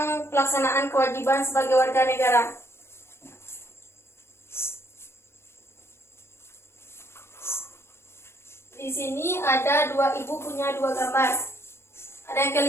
pelaksanaan kewajiban sebagai warga negara. Di sini ada ibu punya dua gambar. Ada yang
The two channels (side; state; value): right; late; 0.12 ms